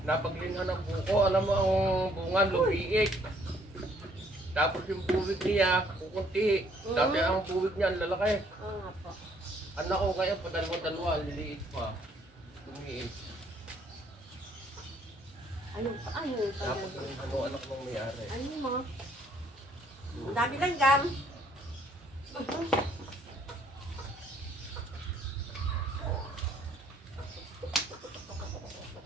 Napaglinhan ng buko, alam mo ang bunga, lumiik. Tapos yung buwig niya, kukunti. Dati ang buwig niya, ang lalaki. Oo nga po. Anak ko ngayon, padalawa-dalawa, liliit pa. Lumiik. Ayun pa, ayun pa. Tapos yung anak mong may-ari. Ayun mo. Ang dami lang gam.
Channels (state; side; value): normal; both; correlation 0.65